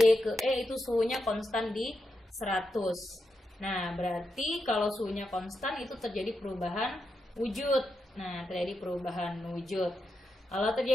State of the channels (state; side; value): normal; both; correlation 0.86